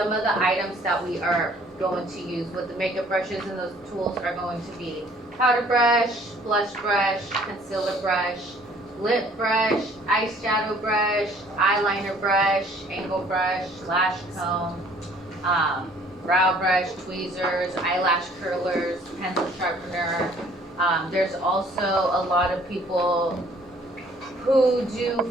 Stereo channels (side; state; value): both; normal; correlation 0.57